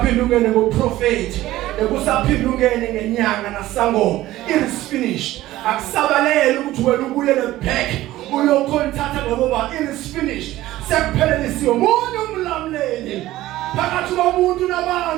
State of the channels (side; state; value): left; quieter; 15.8 dB